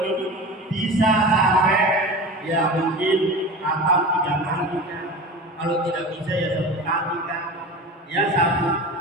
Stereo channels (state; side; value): normal; both; correlation 0.32